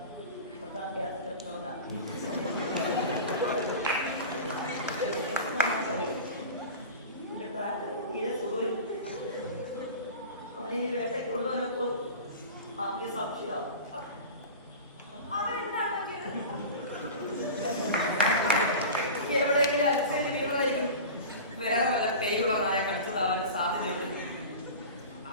അവനെ വേട്ടയ്ക്ക് കൊണ്ടുവന്നപ്പോൾ അവന്റെ സംശയം എവിടെയെങ്കിലും അലച്ചേരി വീണതായിരിക്കും. വേറെ വല്ല പേരുള്ള നായ കടിച്ചതാവാൻ സാധ്യതയുണ്ട്.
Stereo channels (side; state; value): both; inverted; correlation -0.33